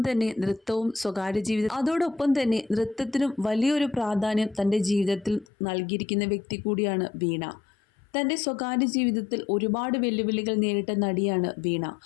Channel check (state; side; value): drops out; right; at 5.5 s